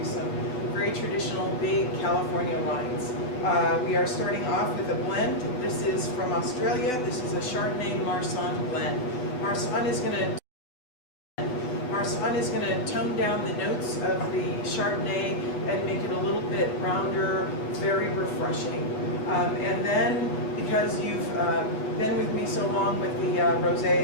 some very traditional big California wines. We are starting off with a blend. This is from Australia. This is a Chardonnay Marsanne blend. Marsanne is going to tone down the notes of the Chardonnay and make it a little bit rounder, very refreshing. And then, because you've been with me so long with the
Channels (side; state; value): right; late; 8.0 ms